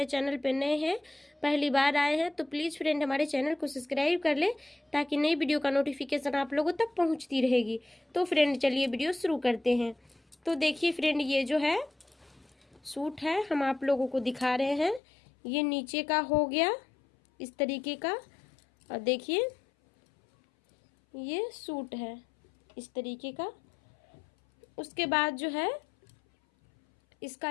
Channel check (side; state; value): right; drops out; at 15.0 s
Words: चैनल पर नए हैं, पहली बार आए हैं, तो प्लीज़ फ्रेंड हमारे चैनल को सब्सक्राइब कर लें ताकि नई वीडियो का नोटिफिकेशन आप लोगों तक पहुँचती रहेगी। तो फ्रेंड चलिए वीडियो शुरू करते हैं। तो देखिए फ्रेंड, ये जो है सूट है, हम आप लोगों को दिखा रहे हैं। ये नीचे का हो गया इस तरीके का, और देखिए ये सूट है इस तरीके का। उसके बाद जो है इसका